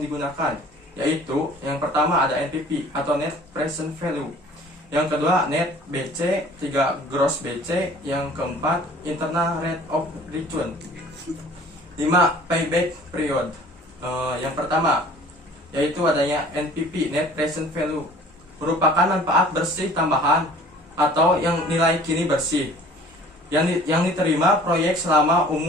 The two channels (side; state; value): both; normal; correlation 0.50